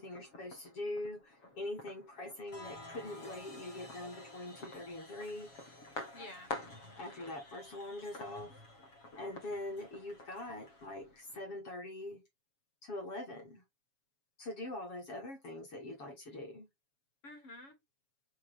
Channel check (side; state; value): right; late; 7.2 ms